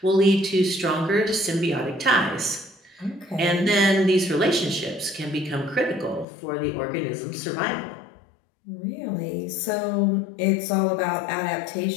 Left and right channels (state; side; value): drops out; right; at 6.2 s